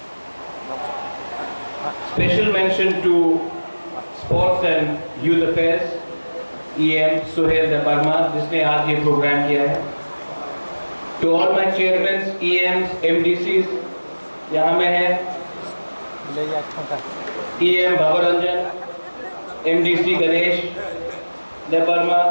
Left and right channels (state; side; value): inverted; both; correlation -1.00